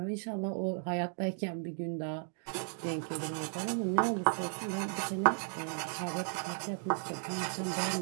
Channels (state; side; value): silent; left; 54 dB below the other